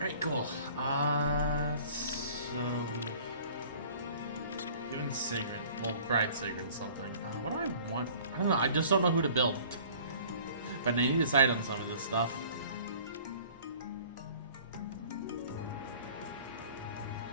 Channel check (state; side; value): inverted; both; correlation -0.49